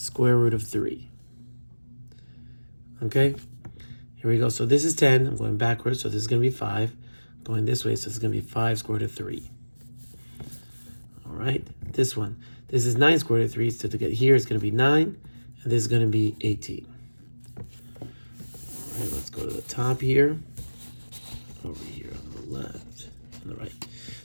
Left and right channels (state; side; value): inverted; both; correlation -1.00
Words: root of 3. Okay, here we go. So this is 10. I'm going backwards, so this is going to be 5. Going this way, so this is going to be 5 square root of 3. All right, this one. This is 9 square root of 3, so to get here, it's going to be 9, and this is going to be 18. All right, let's go to the top here. Over here on the left, on the right.